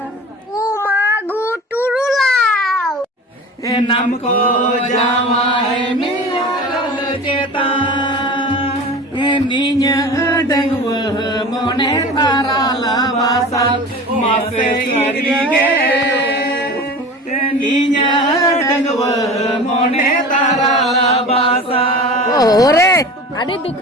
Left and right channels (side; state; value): both; normal; correlation 0.36